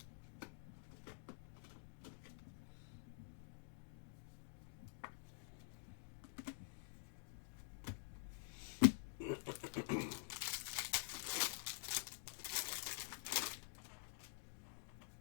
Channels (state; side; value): silent; right; digital silence